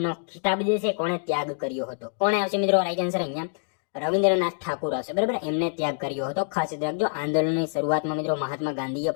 ખિતાબ જે છે કોણે ત્યાગ કર્યો હતો? કોણે આવશે મિત્રો રાઈટ આન્સર? અહીંયા રવિન્દ્રનાથ ઠાકુર આવશે, બરાબર. એમને ત્યાગ કર્યો હતો, ખાસ યાદ રાખજો. આંદોલનની શરૂઆતમાં મિત્રો મહાત્મા ગાંધીએ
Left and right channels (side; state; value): right; silent; digital silence